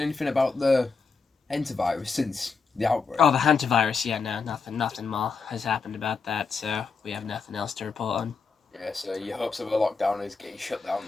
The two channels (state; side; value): quieter; right; 4.9 dB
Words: anything about the hantavirus since the outbreak? Oh, the hantavirus, yeah, no, nothing more has happened about that, so we have nothing else to report on. Yeah, so your hopes of a lockdown is getting shut down